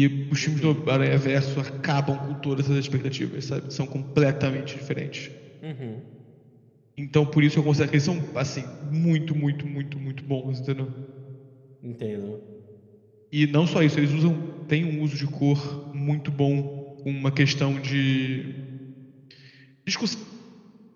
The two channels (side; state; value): both; identical; correlation 1.00